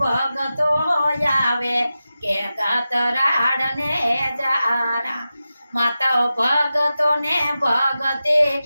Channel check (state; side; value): inverted; both; correlation -0.93